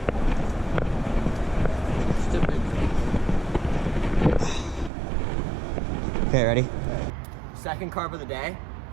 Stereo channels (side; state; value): left; drops out; at 4.9 s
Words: Okay, ready? Second carp of the day,